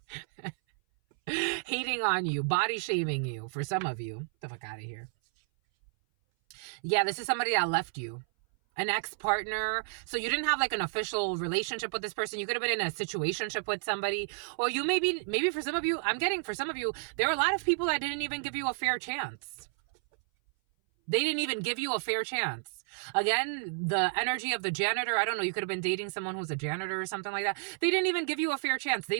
hating on you, body shaming you for some of you. Get the fuck out of here. Yeah, this is somebody that left you. An ex-partner. So you didn't have like an official relationship with this person. You could have been in a situationship with somebody. Or you maybe for some of you, for some of you, there are a lot of people that didn't even give you a fair chance. They didn't even give you a fair chance. Again, the energy of the janitor, I don't know, you could have been dating someone who's a janitor or something like that. They didn't even give you a fair chance. They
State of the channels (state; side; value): silent; left; 57 dB below the other